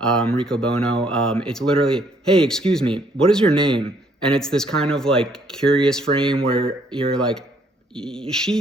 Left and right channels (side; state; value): both; normal; correlation 0.66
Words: Riccobono. It's literally, hey, excuse me, what is your name? And it's this kind of like curious frame where you're like,